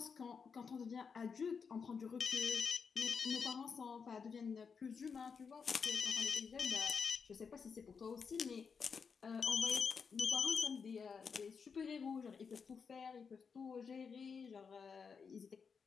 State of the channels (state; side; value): quieter; right; 5.8 dB